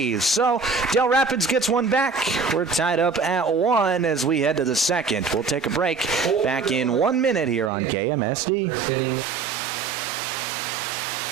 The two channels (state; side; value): drops out; left; at 7.7 s